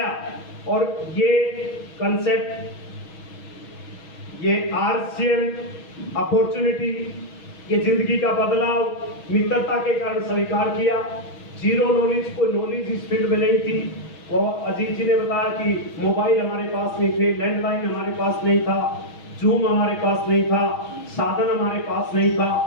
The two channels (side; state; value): right; late; 6.3 ms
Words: और ये कंसेप्ट, ये आरसीएम अपॉर्चुनिटी, ये जिंदगी का बदलाव मित्रता के कारण स्वीकार किया। जीरो नॉलेज, कोई नॉलेज इस फील्ड में नहीं थी। वो अजीत जी ने बताया कि मोबाइल हमारे पास नहीं थे, लैंडलाइन हमारे पास नहीं था, जूम हमारे पास नहीं था, साधन हमारे पास नहीं था।